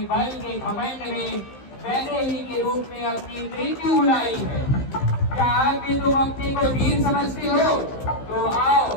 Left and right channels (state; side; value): late; right; 15 ms